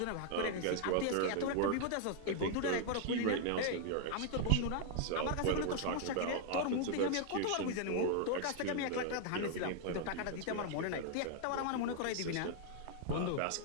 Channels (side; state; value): both; different; correlation 0.00